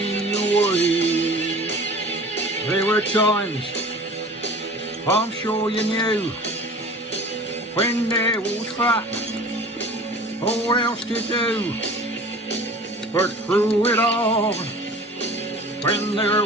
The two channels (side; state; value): both; normal; correlation 0.42